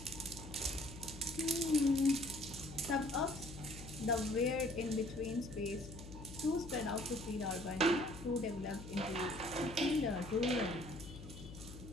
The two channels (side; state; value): left; noise; hum, 13 dB below the sound